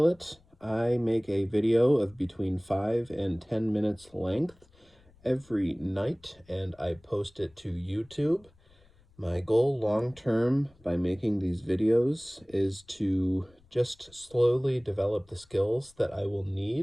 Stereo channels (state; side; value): noise; left; rumble, 29 dB below the sound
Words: I make a video of between 5 and 10 minutes length every night, and I post it to YouTube. My goal long term by making these videos is to just slowly develop the skills that I will